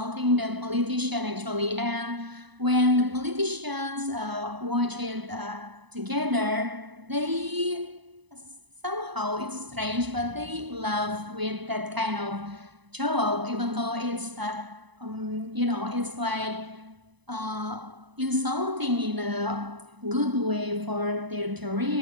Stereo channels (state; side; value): late; left; 1.0 ms